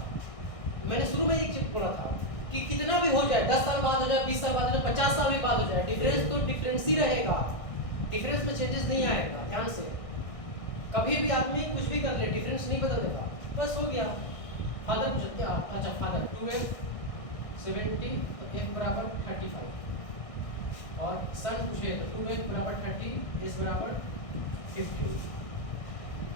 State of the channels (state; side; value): late; right; 1.6 ms